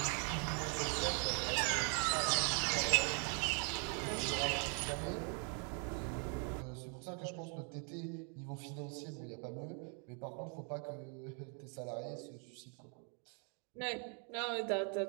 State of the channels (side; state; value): left; quieter; 40.0 dB